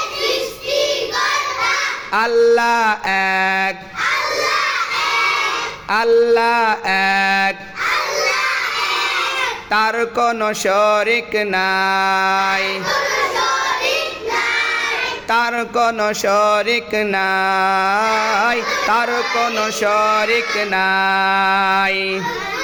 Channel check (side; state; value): both; identical; correlation 1.00